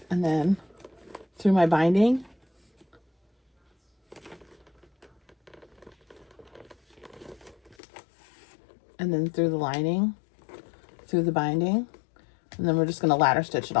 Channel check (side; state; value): right; drops out; at 7.8 s